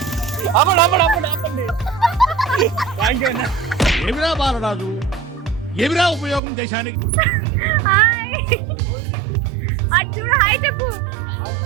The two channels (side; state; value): left; drops out; at 6.4 s